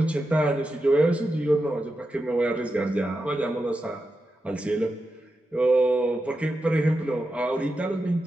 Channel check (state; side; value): normal; both; correlation 0.89